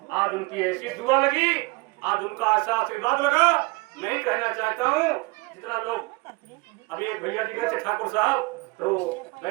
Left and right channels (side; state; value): left; quieter; 26.4 dB